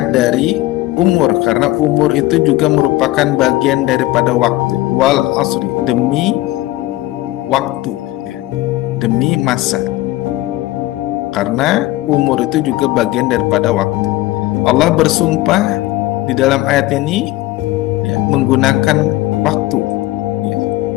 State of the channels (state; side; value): quieter; right; 17.6 dB